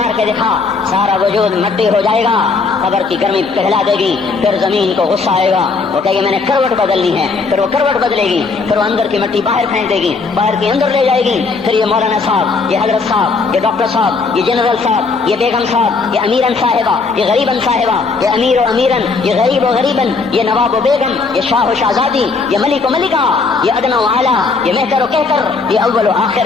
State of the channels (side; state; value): right; quieter; 4.4 dB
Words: کے دکھا. سارا وجود مٹی ہو جائے گا قبر کی گرمی پہلا دے گی، پھر زمین کو غصہ آئے گا، وہ کہے گی میں نے کروٹ بدلنی ہے، پھر وہ کروٹ بدلے گی، پھر وہ اندر کی مٹی باہر پھینک دے گی، باہر کی اندر لے جائے گی، پھر یہ مولانا صاحب، یہ حضرت صاحب، یہ ڈاکٹر صاحب، یہ جنرل صاحب، یہ بیگم صاحب، یہ امیرن صاحبہ، یہ غریبن صاحبہ، یہ امیر و امیرن، یہ غریب و غریبن، یہ نواب و بیگم، یہ شاہ و شہزادی، یہ ملک و ملکہ، یہ ادنا و اعلیٰ، یہ مہتر و کہتر، یہ اول و